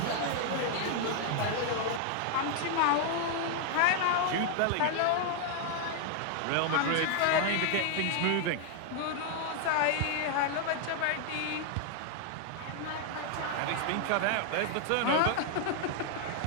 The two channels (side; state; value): both; different; correlation 0.00